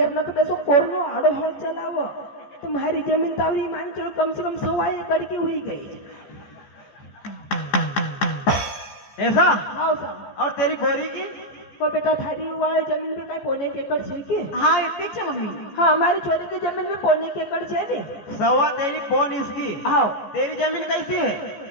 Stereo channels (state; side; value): late; right; 14 ms